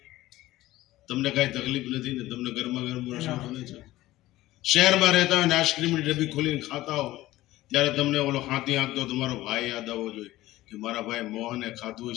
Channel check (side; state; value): right; quieter; 16.6 dB